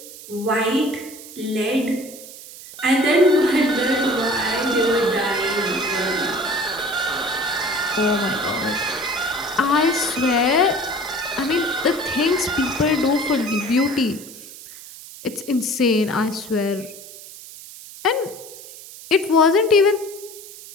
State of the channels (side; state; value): right; noise; hiss, 16 dB below the sound